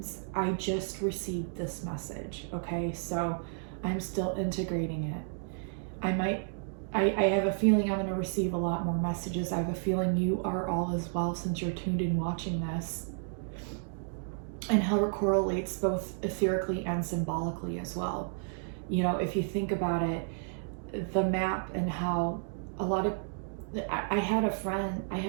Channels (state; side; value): silent; left; digital silence